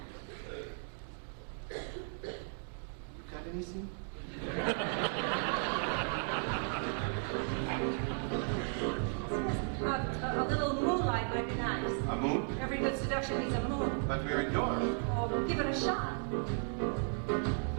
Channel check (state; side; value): silent; left; 54 dB below the other